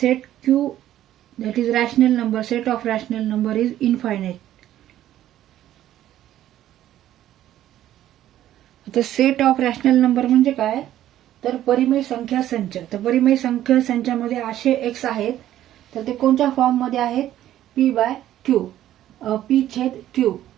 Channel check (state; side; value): quieter; left; 12.6 dB